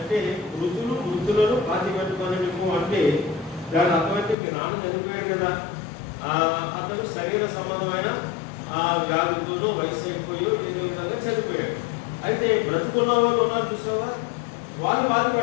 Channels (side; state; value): right; drops out; at 4.4 s